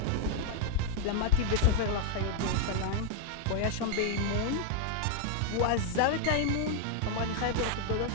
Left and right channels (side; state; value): both; different; correlation 0.00